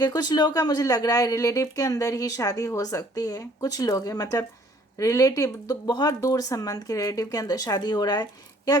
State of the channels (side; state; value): both; normal; correlation 0.58